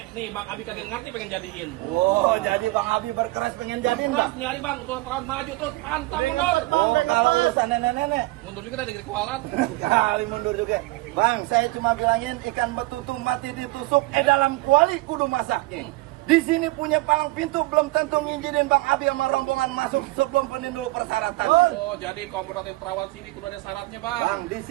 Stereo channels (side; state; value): left; quieter; 21.4 dB